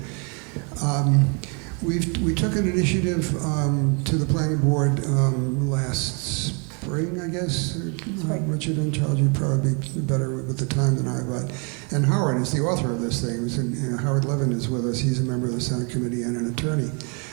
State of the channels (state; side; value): quieter; left; 35.6 dB